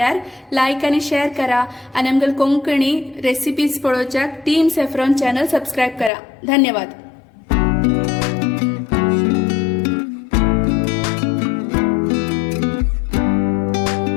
लायक आनी शेअर करा आणि आमगेल कोंकणी रेसिपीज पळोवच्याक टीम सॅफ्रॉन चॅनल सबस्क्राईब करा. धन्यवाद.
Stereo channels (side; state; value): right; drops out; at 6.1 s